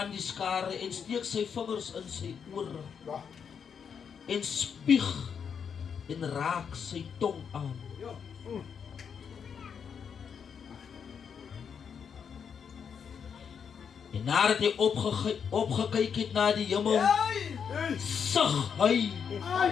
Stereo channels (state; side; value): quieter; right; 7.0 dB